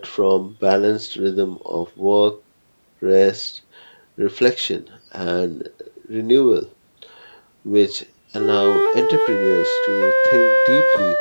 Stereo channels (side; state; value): both; inverted; correlation -1.00